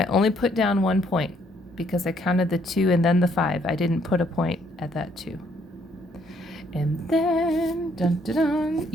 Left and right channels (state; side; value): normal; both; correlation 0.68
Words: only put down 1 point because I counted the 2 and then the 5. I didn't put a point at that 2. And then, dun, dun, dun,